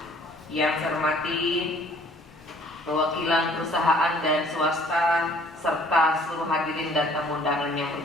yang saya hormati perwakilan perusahaan dan swasta serta seluruh hadirin dan tamu undangan yang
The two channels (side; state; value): both; normal; correlation 0.56